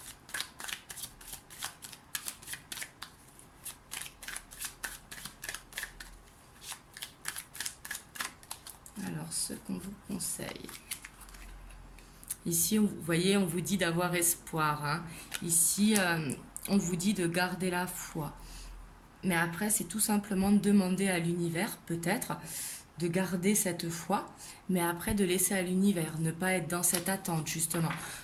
Alors, ce qu'on vous conseille. Ici, vous voyez, on vous dit d'avoir espoir. Hein. Ici, on vous dit de garder la foi. Mais après, c'est tout simplement de demander à l'univers, peut-être, de garder cette foi, mais après de laisser à l'univers, ne pas être dans cette attente, justement,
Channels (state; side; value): identical; both; correlation 1.00